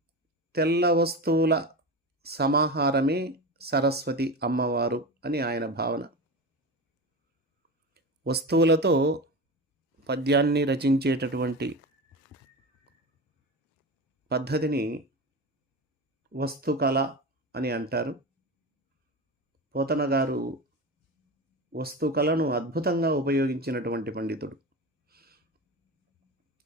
తెల్ల వస్తువుల సమాహారమే సరస్వతి అమ్మవారు అని ఆయన భావన. వస్తువులతో పద్యాన్ని రచించేటటువంటి పద్ధతిని వస్తుకళ అని అంటారు. పోతన గారు వస్తుకళను అద్భుతంగా ఉపయోగించినటువంటి పండితుడు.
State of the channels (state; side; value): normal; both; correlation 0.25